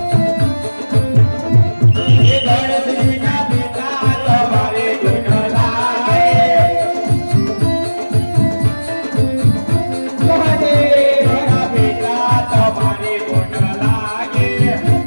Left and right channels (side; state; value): both; inverted; correlation -1.00